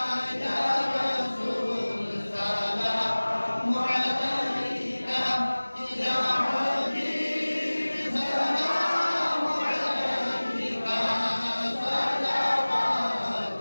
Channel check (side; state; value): both; inverted; correlation -1.00